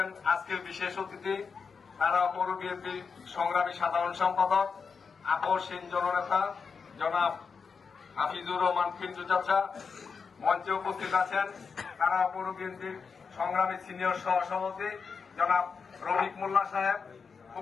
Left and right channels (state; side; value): quieter; right; 5.5 dB